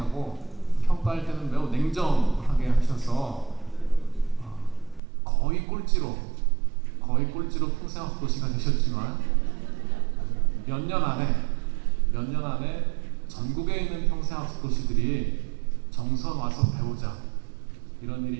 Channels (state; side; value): drops out; left; at 5.0 s